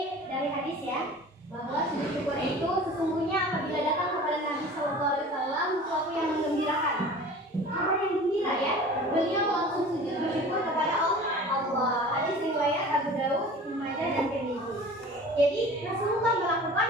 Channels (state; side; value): normal; both; correlation 0.41